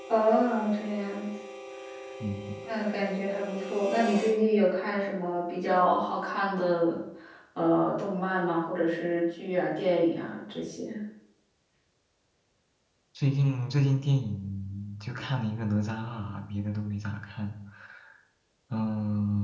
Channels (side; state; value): both; identical; correlation 1.00